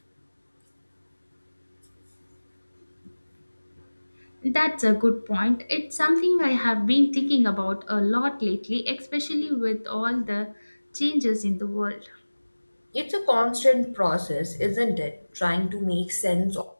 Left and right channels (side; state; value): both; inverted; correlation -1.00